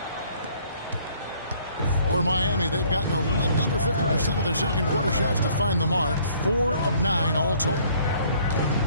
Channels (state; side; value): inverted; both; correlation -0.60